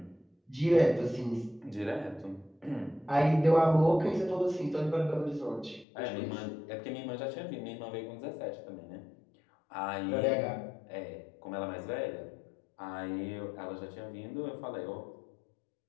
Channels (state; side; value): drops out; right; at 5.9 s